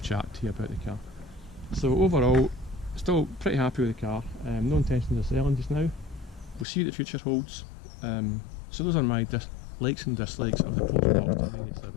to you about the car. So overall, still pretty happy with the car. No intentions of selling just now. We'll see what the future holds. So those are my likes and dislikes of the Porsche Boxster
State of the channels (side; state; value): right; drops out; at 6.7 s